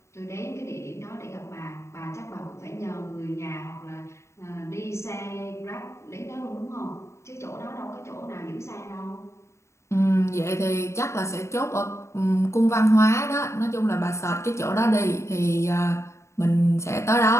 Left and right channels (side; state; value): right; late; 0.14 ms